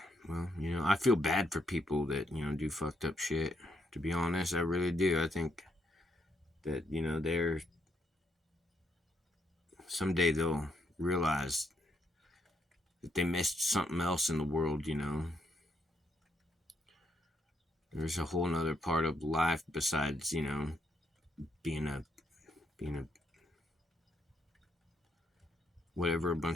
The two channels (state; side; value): normal; both; correlation 0.75